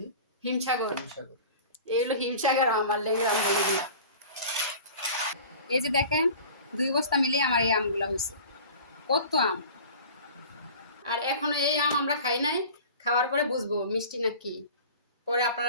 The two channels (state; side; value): inverted; both; correlation -0.40